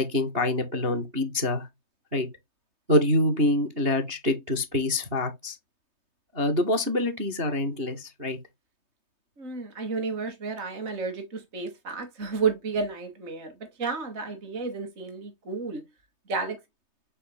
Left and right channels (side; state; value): left; late; 3.2 ms